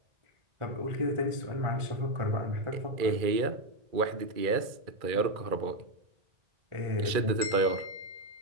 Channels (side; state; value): left; late; 2.3 ms